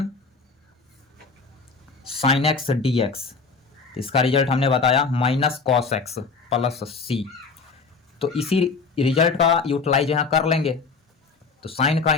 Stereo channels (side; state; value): right; quieter; 4.6 dB